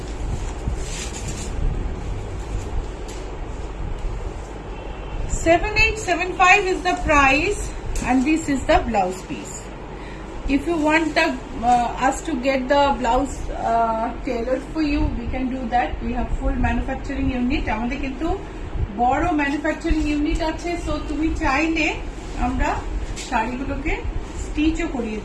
$7875 is the price, and this is the blouse piece. If you want us to get the blouse tailored for you, we can do that. We have full manufacturing unit. আমাদের কিন্তু বড় ম্যানুফ্যাকচারিং ইউনিট আছে, so তুমি চাইলে আমরা শাড়িগুলোকে স্টিচও করিয়ে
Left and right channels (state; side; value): identical; both; correlation 1.00